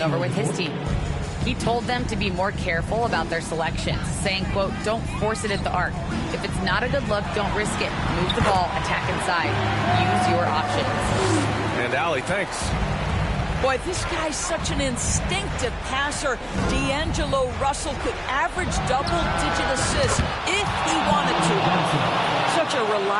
over with his team. He told them to be more careful about their selections, saying, quote, don't force it at the arc. If it's not a good look, don't risk it. Move the ball, attack inside. Use your options. And Allie, thanks. Boy, this guy's such an instinctive passer. D'Angelo Russell could average double-digit assists if he wanted to. Such a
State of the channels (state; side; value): identical; both; correlation 1.00